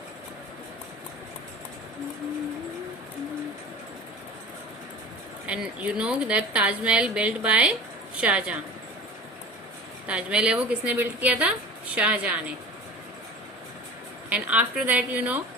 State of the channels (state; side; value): normal; both; correlation 0.37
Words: And you know that Taj Mahal built by Shah Jahan. Taj Mahal है वो किसने बिल्ट किया था? शाहजहां ने. And after that you know